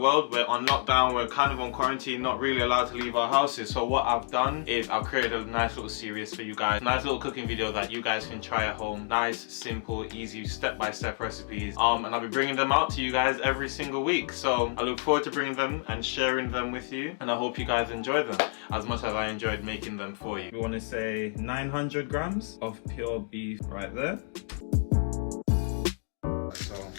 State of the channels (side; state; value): right; silent; 58 dB below the other